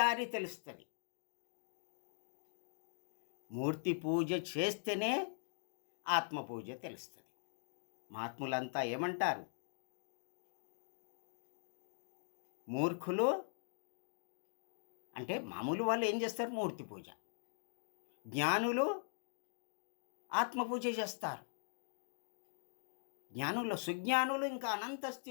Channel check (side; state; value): right; silent; digital silence